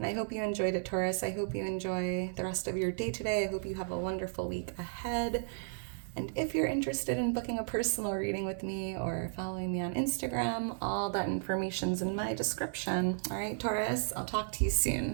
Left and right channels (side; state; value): left; silent; 55 dB below the other